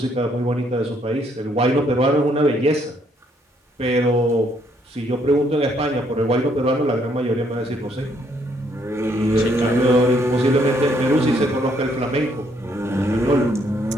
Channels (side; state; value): both; normal; correlation 0.69